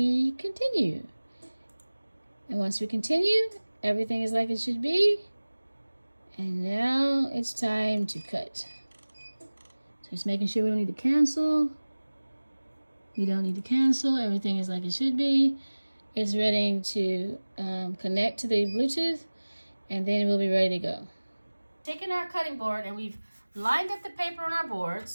continue. And once we continue, everything is like it should be. And now it's time to cut. So just making sure we don't need to cancel. We don't need to cancel. Everything is like it should be. It's ready to connect to the Bluetooth, and then we'll be ready to go. Taking our cutting board, and we've lined up the paper on our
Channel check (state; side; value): inverted; both; correlation -1.00